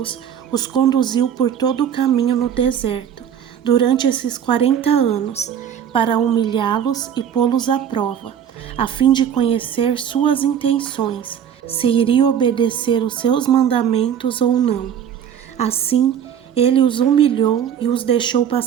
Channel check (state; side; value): quieter; left; 8.9 dB